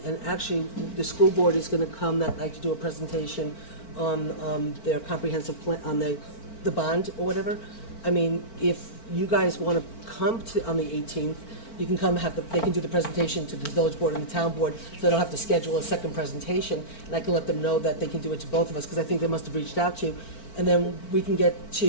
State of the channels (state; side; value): late; right; 4.4 ms